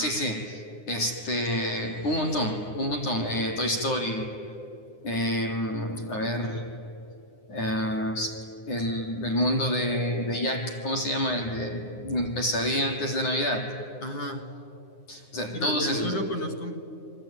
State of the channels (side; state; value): right; late; 9.7 ms